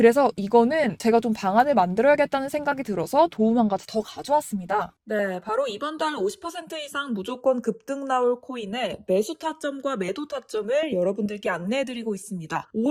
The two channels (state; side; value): identical; both; correlation 1.00